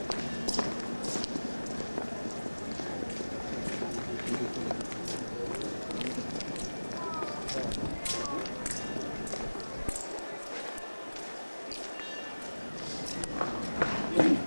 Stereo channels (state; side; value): inverted; both; correlation -1.00